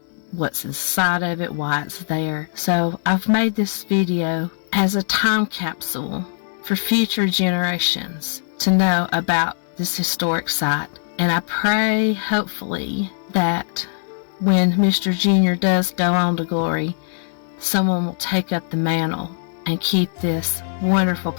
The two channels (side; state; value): right; silent; digital silence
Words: what's inside of it, why it's there. So I've made this video as a time capsule for future generations to know about this historic site. And I pray, hopefully, that when Mr. Junior does go on to glory, someone will take up the mantle and keep this wonderful